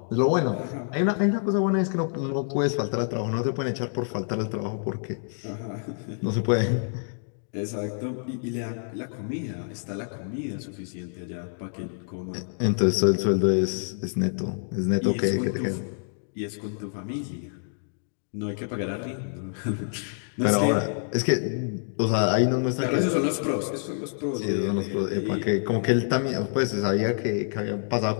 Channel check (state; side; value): silent; right; digital silence